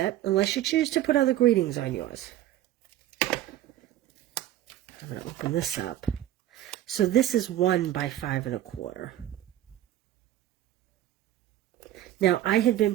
unless you choose to put other greetings on yours. I'm going to open this up. So this is 1 by 5 1/4. Now, I had been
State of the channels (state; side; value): quieter; left; 13.2 dB